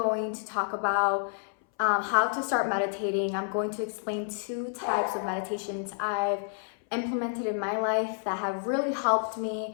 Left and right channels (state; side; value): silent; right; 58 dB below the other